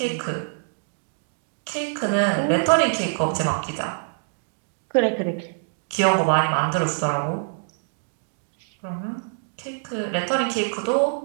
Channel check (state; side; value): silent; left; digital silence